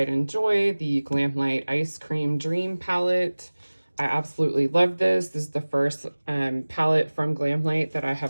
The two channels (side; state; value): both; inverted; correlation -1.00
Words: and joy, the Glamlight Ice Cream Dream palette. I absolutely love this. This is the first palette from Glamlight that I